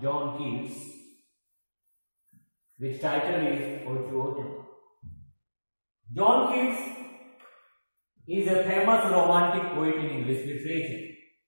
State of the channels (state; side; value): inverted; both; correlation -1.00